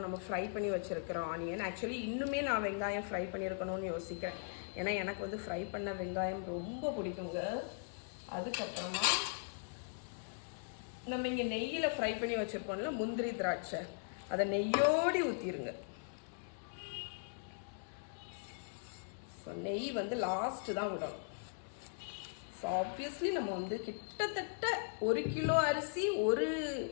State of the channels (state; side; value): silent; right; digital silence